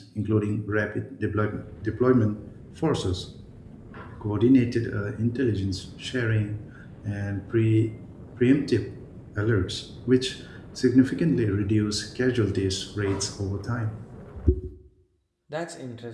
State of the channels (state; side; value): identical; both; correlation 1.00